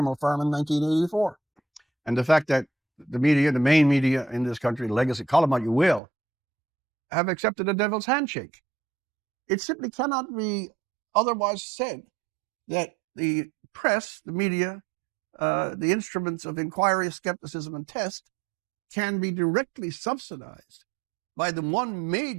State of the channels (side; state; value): left; drops out; at 6.0 s